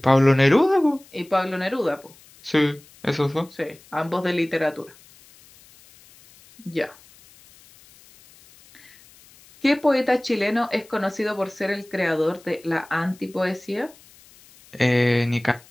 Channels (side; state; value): left; noise; hiss, 26 dB below the sound